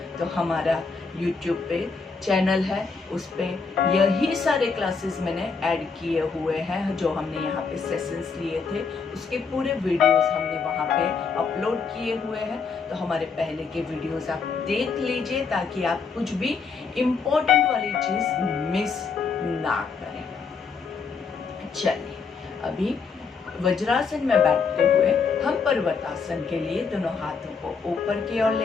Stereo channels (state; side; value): quieter; right; 5.1 dB